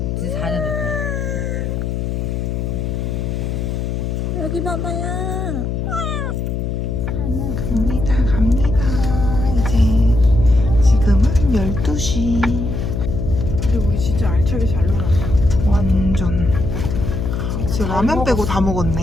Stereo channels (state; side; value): noise; left; hum, 2 dB below the sound